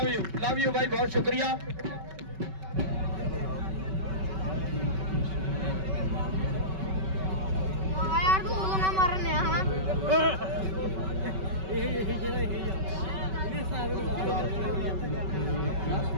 लव यू भाई बहुत शुक्रिया।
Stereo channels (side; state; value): left; late; 5.3 ms